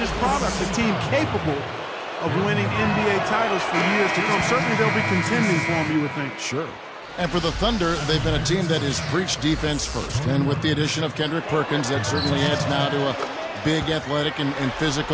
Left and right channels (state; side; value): identical; both; correlation 1.00